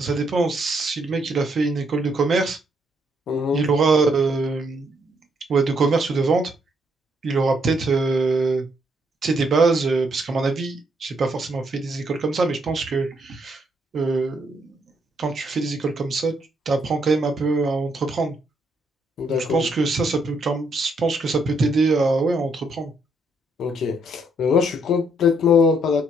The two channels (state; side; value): normal; both; correlation 0.73